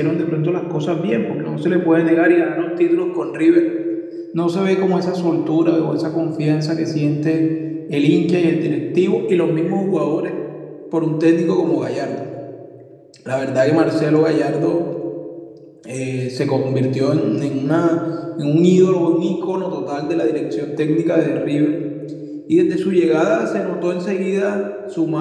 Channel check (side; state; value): both; identical; correlation 1.00